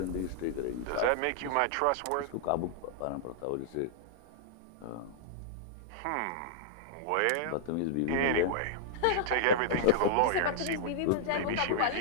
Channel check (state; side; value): different; both; correlation -0.01